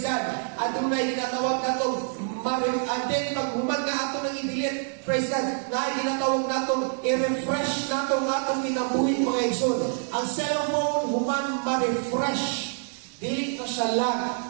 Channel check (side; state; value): left; silent; 57 dB below the other